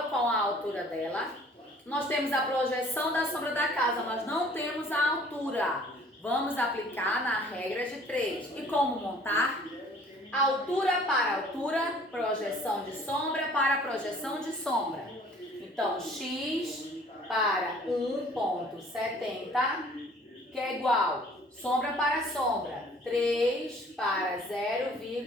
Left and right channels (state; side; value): normal; both; correlation 0.54